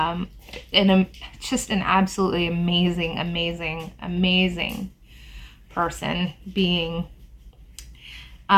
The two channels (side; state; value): both; identical; correlation 1.00